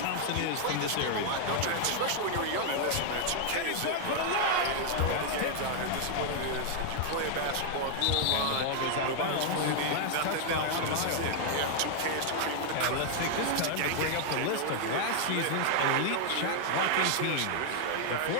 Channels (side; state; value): both; different; correlation 0.00